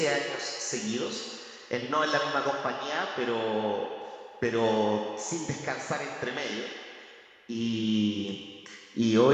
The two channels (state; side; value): identical; both; correlation 1.00